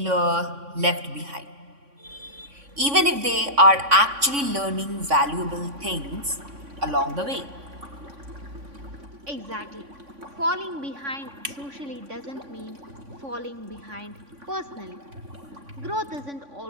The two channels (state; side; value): late; left; 3.5 ms